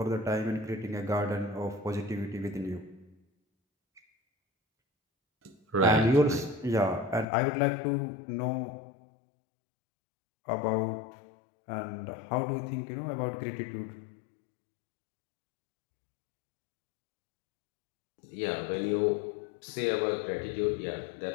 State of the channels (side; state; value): right; drops out; at 7.2 s